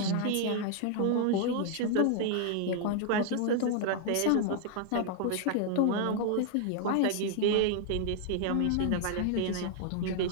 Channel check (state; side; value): different; both; correlation 0.00